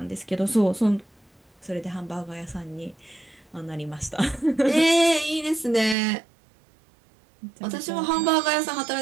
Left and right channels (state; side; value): drops out; left; at 6.0 s